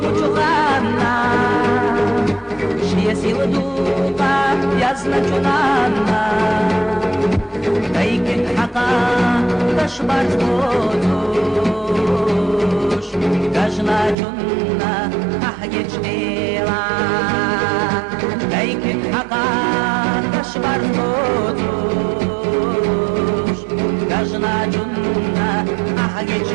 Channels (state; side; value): drops out; left; at 14.2 s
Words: шия сила духа язначунана, кайкин хака ташбарц бодуш, кажначунна ахгеч дела, кайкин хака ташбарц бодуш, кажначунна ахгеч